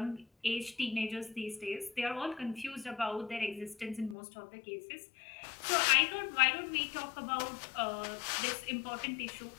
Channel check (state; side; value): drops out; right; at 4.2 s